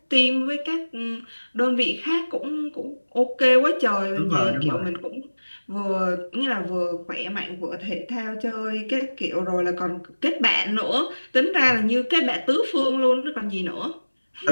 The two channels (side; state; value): both; inverted; correlation -1.00